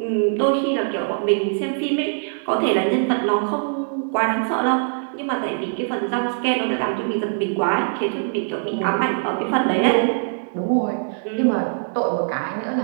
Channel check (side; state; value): left; silent; digital silence